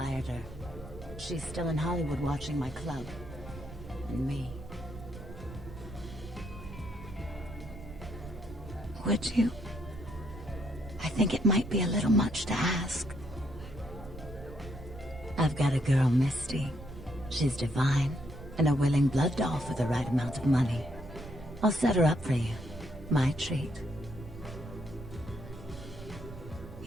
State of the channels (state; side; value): noise; right; rumble, 14 dB below the sound